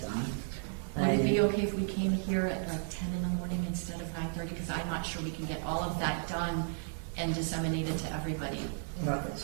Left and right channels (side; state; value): left; silent; digital silence